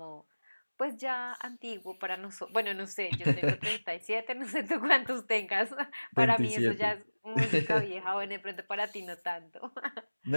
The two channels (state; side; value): inverted; both; correlation -1.00